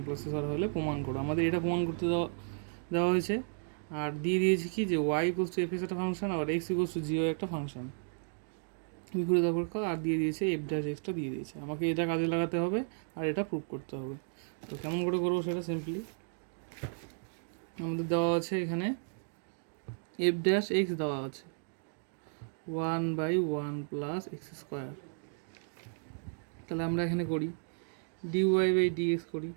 + হলে প্রমাণ করো। আমাদের এটা প্রমাণ করতে দেওয়া হয়েছে, আর দিয়ে দিয়েছি কি যে Y equals to F X একটা ফাংশন, আবার X equals to G Y একটা ফাংশন, বিপরীত অপেক্ষক, আর দিয়ে দিয়েছে এফ ড্যাশ এক্সটা দিয়ে দিয়েছে। আমাকে এটা কাজে লাগাতে হবে আর এটা প্রুভ করতে হবে। তো কেমন করে করবো সেটা সিম্পলি আমাদের দেওয়া আছে এখানে এফ ড্যাশ এক্স দেওয়া আছে 1/1 + x²। তাহলে আমরা এখানে করি dy/dx করি,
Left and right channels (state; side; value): silent; left; digital silence